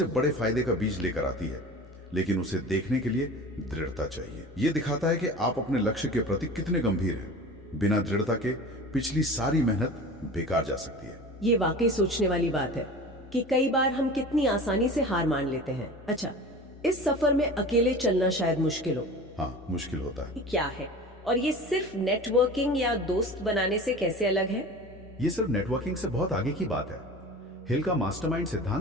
बड़े फायदे का बीज लेकर आती है, लेकिन उसे देखने के लिए दृढ़ता चाहिए। यह दिखाता है कि आप अपने लक्ष्य के प्रति कितने गंभीर हैं। बिना दृढ़ता के पिछली सारी मेहनत बेकार जा सकती है। ये वाकई सोचने वाली बात है कि कई बार हम कितनी आसानी से हार मान लेते हैं। अच्छा, इस सफर में अकेले चलना शायद मुश्किल हो। हाँ, मुश्किल होता है। क्या है? और ये सिर्फ नेटवर्किंग या दोस्त बनाने से कैसे अलग है? ये सिर्फ नेटवर्किंग से बहुत आगे की बात है। हिल का मास्टरमाइंड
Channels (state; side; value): normal; both; correlation 0.36